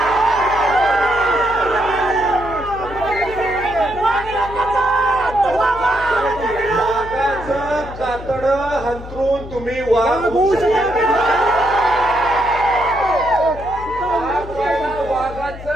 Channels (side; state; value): left; noise; hum, 13 dB below the sound